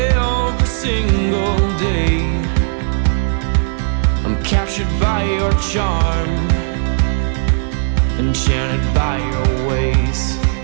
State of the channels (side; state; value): left; silent; digital silence